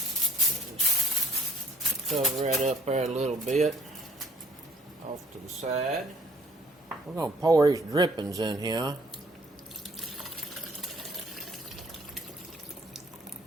Just cover that up there a little bit off to the side. We're going to pour these drippings in here.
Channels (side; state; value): both; normal; correlation 0.59